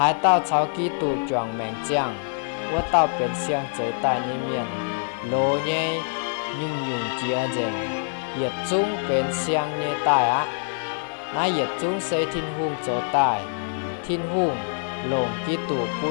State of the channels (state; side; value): silent; right; 56 dB below the other